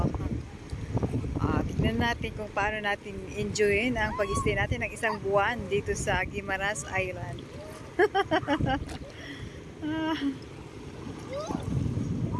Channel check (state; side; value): identical; both; correlation 1.00